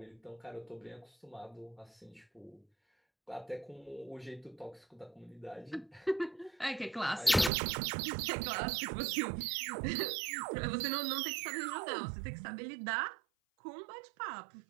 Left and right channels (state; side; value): drops out; left; at 7.5 s